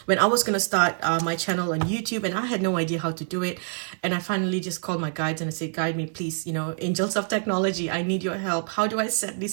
when I was going to start my channel on YouTube, and I had no idea how to do it, and I finally just called my guides and I said, guide me, please, you know, angels of technology, I need your help. How do I set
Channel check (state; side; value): silent; left; digital silence